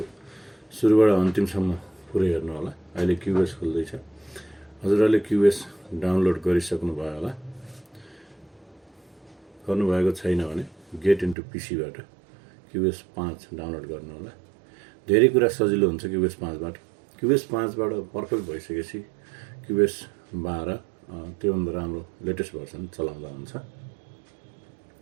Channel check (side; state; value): left; drops out; at 11.4 s